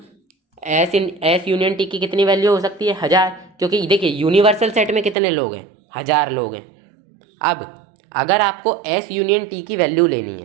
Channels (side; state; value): left; drops out; at 5.2 s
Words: एस यूनियन टी की कितनी वैल्यू हो सकती है, 1000, क्योंकि देखिए यूनिवर्सल सेट में कितने लोग हैं, 1000 लोग हैं। अब अगर आपको एस यूनियन टी की वैल्यू लेनी